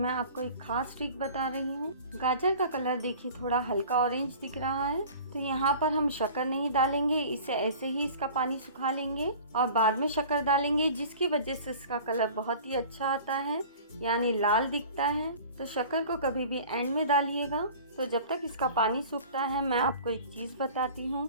आपको एक खास ट्रिक बता रही हूँ। गाजर का कलर देखिए थोड़ा हल्का ऑरेंज दिख रहा है, तो यहाँ पर हम शक्कर नहीं डालेंगे, इसे ऐसे ही इसका पानी सुखा लेंगे और बाद में शक्कर डालेंगे, जिसकी वजह से इसका कलर बहुत ही अच्छा आता है, यानी लाल दिखता है। तो शक्कर को कभी भी एंड में डालिएगा। तो जब तक इसका पानी सूखता है मैं आपको एक चीज़ बताती हूँ।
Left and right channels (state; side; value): inverted; both; correlation -0.43